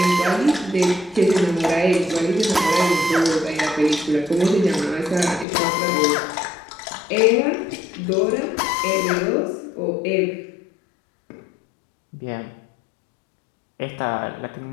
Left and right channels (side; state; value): right; drops out; at 5.5 s